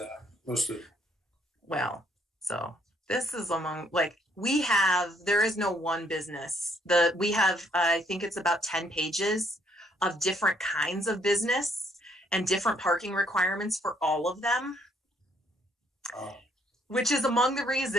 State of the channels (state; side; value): normal; both; correlation 0.68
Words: listed? Well, so this is among, like, there is no one business. We have, I think it's about 10 pages of different kinds of business and different parking requirements for all of them. Which is among the